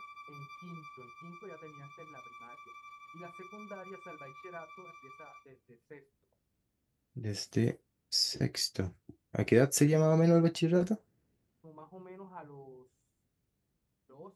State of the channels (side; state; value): both; identical; correlation 1.00